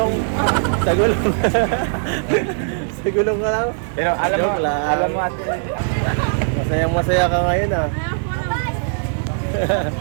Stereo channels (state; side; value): silent; left; digital silence